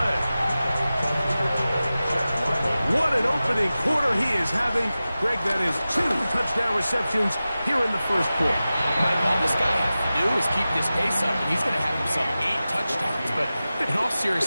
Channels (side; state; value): both; inverted; correlation -0.95